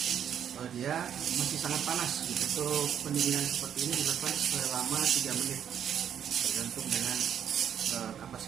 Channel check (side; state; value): left; quieter; 9.0 dB